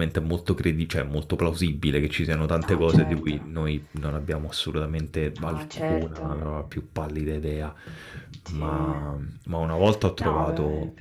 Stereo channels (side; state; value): both; identical; correlation 1.00